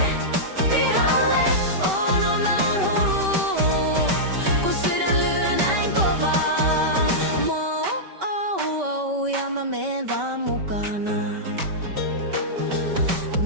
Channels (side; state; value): left; late; 5.2 ms